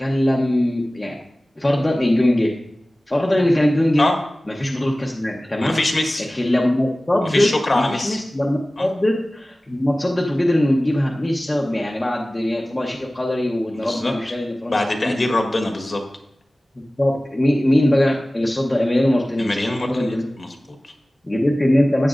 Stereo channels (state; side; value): normal; both; correlation 0.97